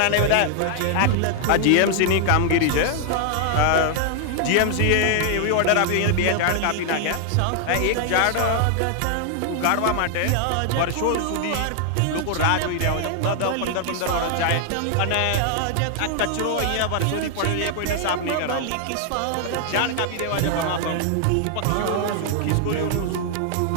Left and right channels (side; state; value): both; different; correlation 0.00